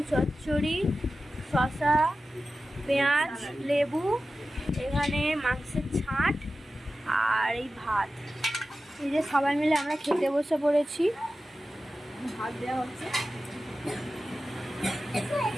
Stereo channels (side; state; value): both; normal; correlation 0.94